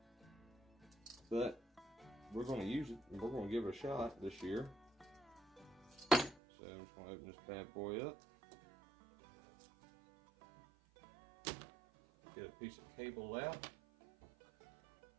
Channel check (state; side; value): drops out; left; at 6.4 s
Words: but we're going to use it and we're going to give it a shot this year. So I'm just going to open this bad boy up, get a piece of cable out,